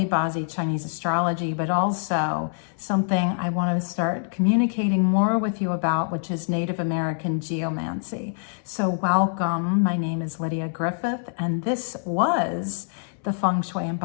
Bazi Chinese astrology, but also something I want to start communicating more with you about, which is Native American geomancy. So welcome, my name is Lydia Griffith, and this was the Feng Shui and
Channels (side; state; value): right; silent; 62 dB below the other